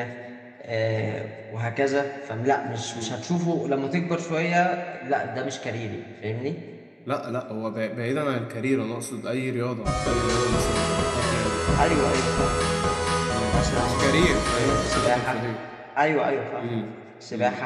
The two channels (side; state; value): both; identical; correlation 1.00